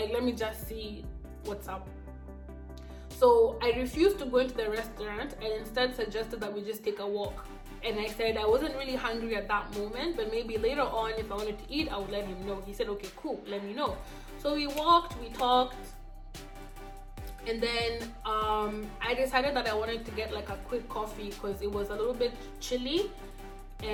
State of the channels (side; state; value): both; identical; correlation 1.00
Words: let me just see what's up. So I refused to go into the restaurant, and instead suggested that we just take a walk. And I said I wasn't really hungry at that moment, but maybe later on, if I wanted to eat, I would let him know. He said, okay, cool, let me know. So we walked, we talked, and then I decided that I wanted to get like a quick coffee, because it was a little bit chilly